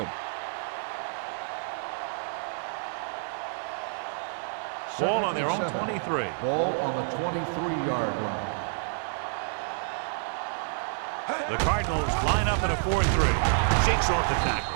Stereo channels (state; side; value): silent; left; digital silence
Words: him. Ball on their own 23. Ball on the 23-yard line. The Cardinals line up in a 4-3. Shakes off the tackle.